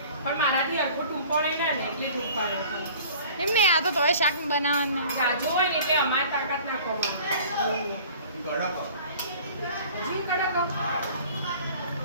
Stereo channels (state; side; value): inverted; both; correlation -0.47